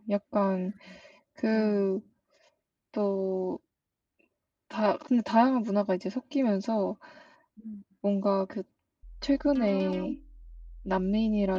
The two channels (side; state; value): both; identical; correlation 1.00